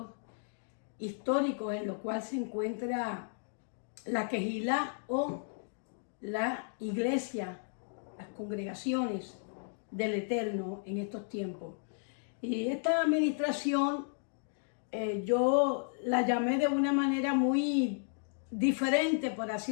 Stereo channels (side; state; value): right; silent; digital silence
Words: históricos en los cuales se encuentra la Kehilá o la iglesia, las congregaciones del Eterno en estos tiempos. Y esta administración yo la llamé de una manera muy diferente, por